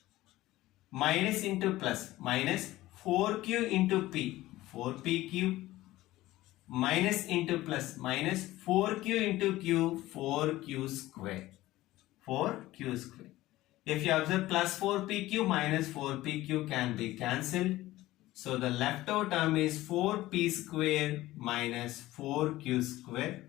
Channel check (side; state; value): right; quieter; 16.8 dB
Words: minus into plus minus 4q into p, 4pq minus into plus minus 4q into q 4q square 4q square. If you observe plus 4pq minus 4pq can be cancelled. So the left out term is 4p square minus 4q square,